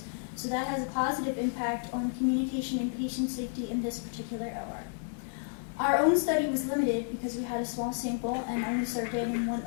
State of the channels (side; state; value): right; silent; digital silence